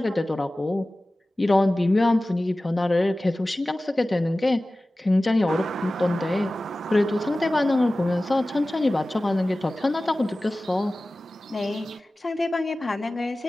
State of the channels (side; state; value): both; normal; correlation 0.97